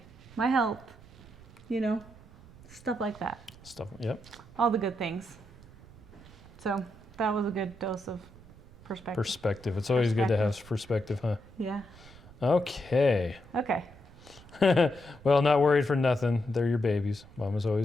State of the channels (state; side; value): noise; right; rumble, 21 dB below the sound